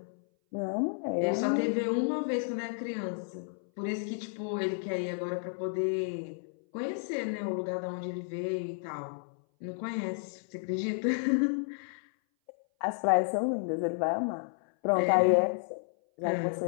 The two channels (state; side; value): silent; right; 57 dB below the other